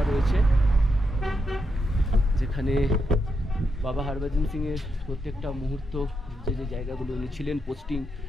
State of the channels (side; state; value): both; normal; correlation 0.83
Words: রয়েছে, যেখানে বাবা হরভজন সিংয়ের প্রত্যেকটা মুহূর্ত, যে যে জায়গাগুলো উনি ছিলেন পোস্টিং,